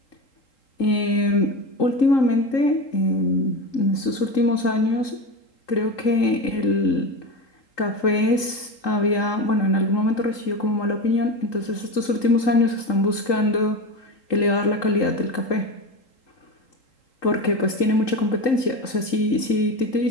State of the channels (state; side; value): late; right; 3.8 ms